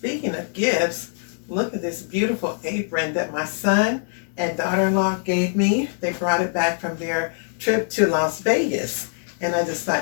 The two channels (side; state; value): right; silent; digital silence